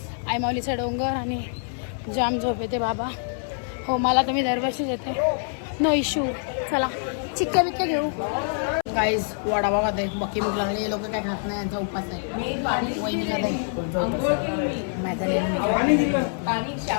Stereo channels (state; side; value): silent; right; 62 dB below the other